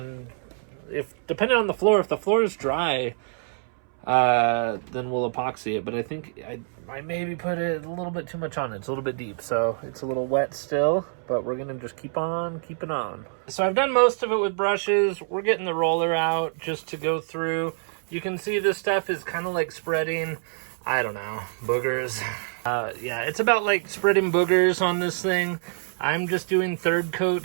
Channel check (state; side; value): silent; left; 61 dB below the other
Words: depending on the floor, if the floor is dry, then we'll epoxy it. But I think I maybe put it a little bit too much on it. It's a little bit deep, so it's a little wet still, but we're gonna just keep on keeping on. So I've done most of it with brushes. We're getting the roller out just to go through. You can see this stuff is kind of like spreading, I don't know, boogers. Yeah, it's about like spreading boogers on this thing. I'm just doing third